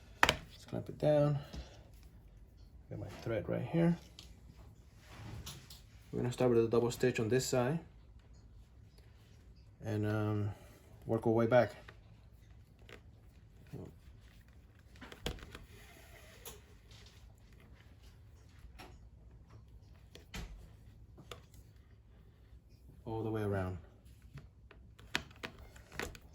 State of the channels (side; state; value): both; identical; correlation 1.00